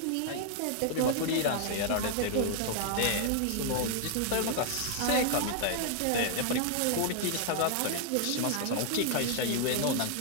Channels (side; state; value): both; different; correlation -0.01